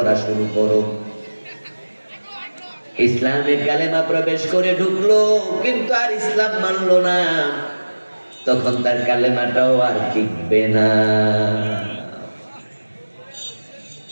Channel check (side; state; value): both; inverted; correlation -1.00